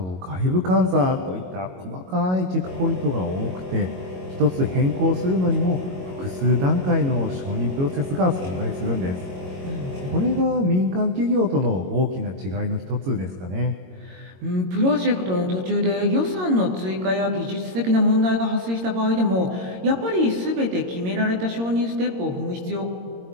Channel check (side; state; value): left; late; 22 ms